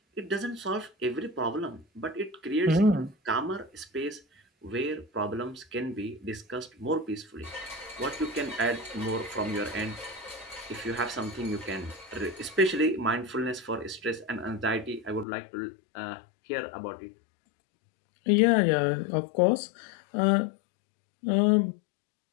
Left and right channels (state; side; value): drops out; right; at 15.2 s